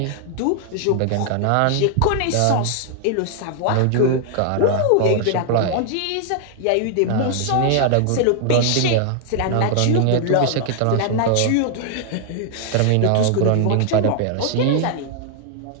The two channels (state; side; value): different; both; correlation 0.00